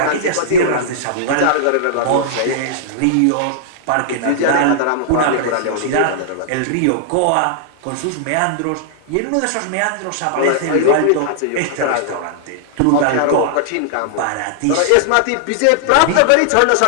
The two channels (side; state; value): both; different; correlation -0.01